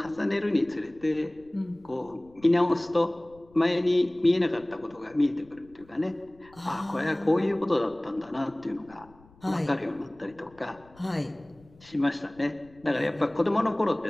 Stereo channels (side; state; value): left; noise; rumble, 27 dB below the sound